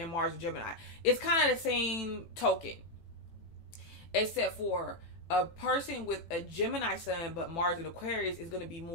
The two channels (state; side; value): late; right; 18 ms